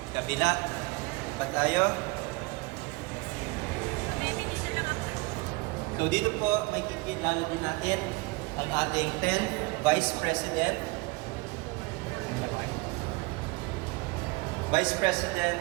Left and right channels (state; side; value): quieter; left; 25.4 dB